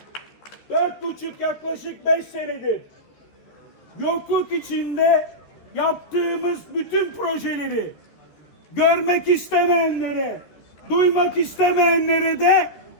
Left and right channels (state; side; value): late; right; 13 ms